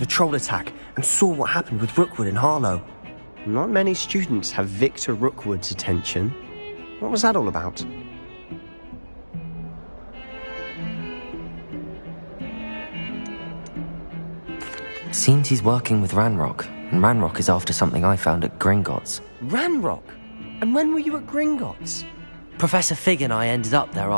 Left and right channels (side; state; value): both; inverted; correlation -1.00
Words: troll attack and saw what happened with Rookwood and Harlow. Not many students have Victor Rookwood's attention. What was that all about? Seems he's working with Ranrock, and Ranrock is after something I found at Gringotts. Ranrock? And when were you at Gringotts? Professor Fig and I ended up there